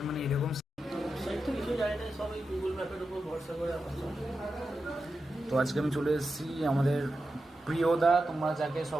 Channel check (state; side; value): normal; both; correlation 0.90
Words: মানে এরকম তো আজকে আমি চলে এসেছি আমাদের প্রিয়দা, তোমরা যাকে